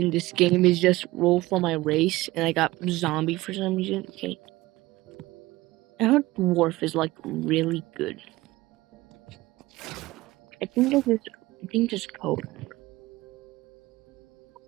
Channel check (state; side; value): quieter; left; 18.9 dB